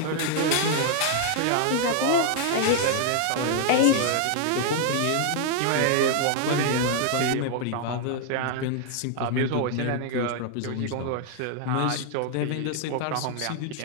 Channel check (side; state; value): both; different; correlation 0.00